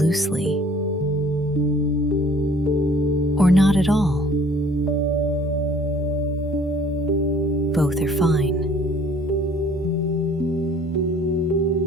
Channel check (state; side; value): normal; both; correlation 0.54